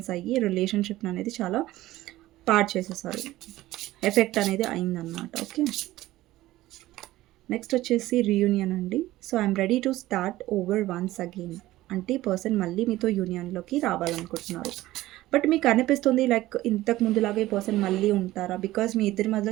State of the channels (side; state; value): left; quieter; 16.4 dB